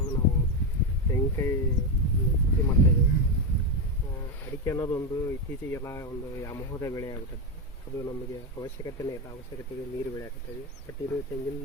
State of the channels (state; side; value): normal; both; correlation 0.10